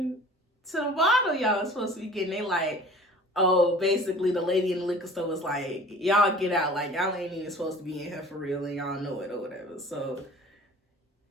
to the bottle y'all was supposed to be getting? They like, oh, basically the lady in the liquor store was like, y'all get out. Like, y'all ain't even supposed to be in here for real and y'all know it or whatever. So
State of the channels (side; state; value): both; normal; correlation 0.45